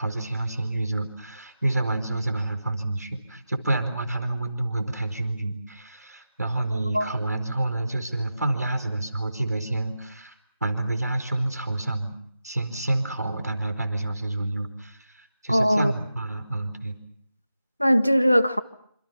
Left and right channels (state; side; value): inverted; both; correlation -0.92